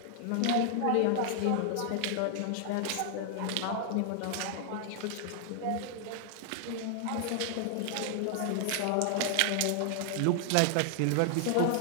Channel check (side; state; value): both; different; correlation 0.00